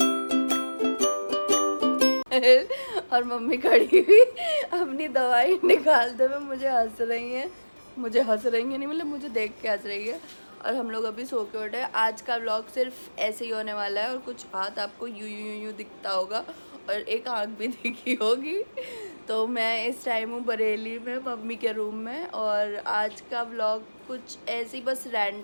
और mummy खड़ी हुई अपनी दवाई निकालते हुए मुझे हंस रही हैं, नहीं मतलब मुझे देख के हंस रही है। और हम लोग अभी सो के उठे। आज का व्लॉग सिर्फ ऐसे ही होने वाला है और कुछ हाथ आपको यूं दिखता होगा और एक आँख भी दिखी होगी। तो मैं इस टाइम हूँ बरेली में मम्मी के रूम में और आज का व्लॉग कुछ ऐसे ही बस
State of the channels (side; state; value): both; inverted; correlation -1.00